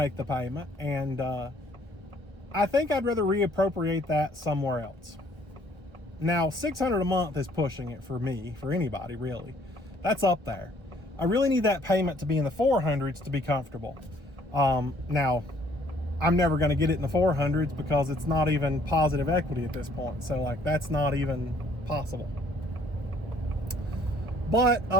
the payment, and I think I'd rather reappropriate that somewhere else. Now, $600 a month is pushing it for me, for anybody really. That's up there. I really need that payment to be in the 400s to be comfortable. Now, I'm never going to get it in the 400s because it's not even positive equity at this point. So that's not even possible. But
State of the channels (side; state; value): left; late; 1.2 ms